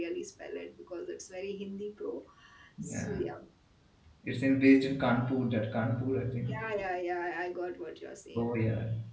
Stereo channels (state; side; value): identical; both; correlation 1.00